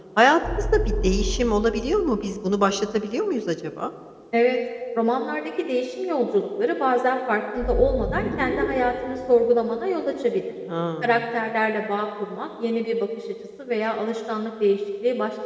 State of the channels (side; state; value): both; identical; correlation 1.00